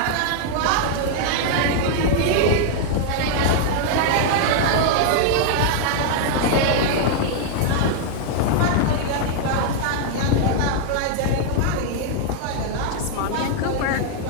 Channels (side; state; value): both; different; correlation 0.00